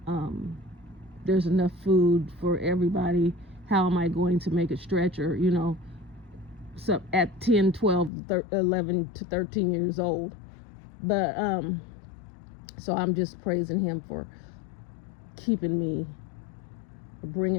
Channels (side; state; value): right; drops out; at 8.1 s